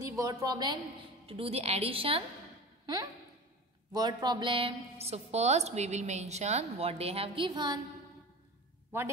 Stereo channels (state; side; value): normal; both; correlation 0.34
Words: word problem, to do the addition? Word problem. So first we will mention what they have given. What